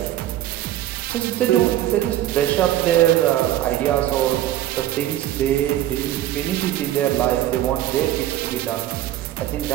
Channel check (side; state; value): left; quieter; 13.2 dB